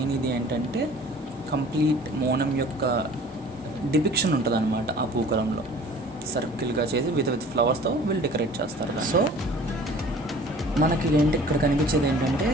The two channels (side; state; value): both; normal; correlation 0.48